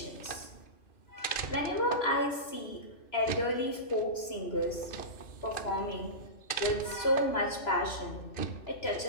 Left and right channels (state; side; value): late; right; 3.0 ms